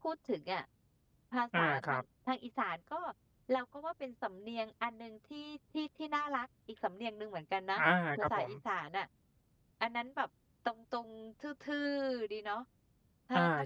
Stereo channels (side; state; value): both; identical; correlation 1.00